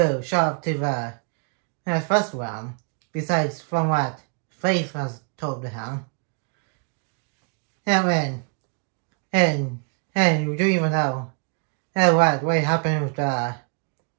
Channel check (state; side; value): quieter; left; 39.5 dB